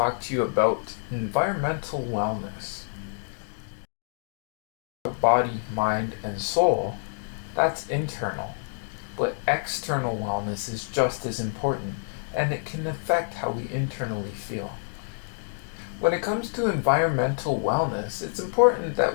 to you about environmental wellness. Body, mind, and soul, that's internal, but external wellness is just as important, and it can affect how we internally feel. When it comes to environmental wellness, it's important that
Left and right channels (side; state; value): right; silent; digital silence